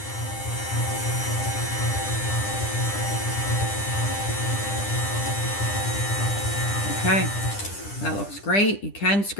Okay, that looks great. You can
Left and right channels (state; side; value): late; right; 10 ms